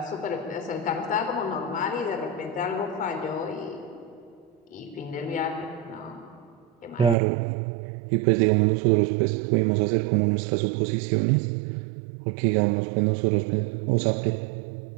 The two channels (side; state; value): left; drops out; at 7.2 s